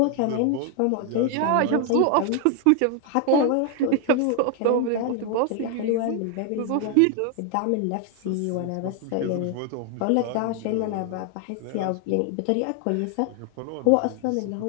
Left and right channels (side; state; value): both; different; correlation 0.00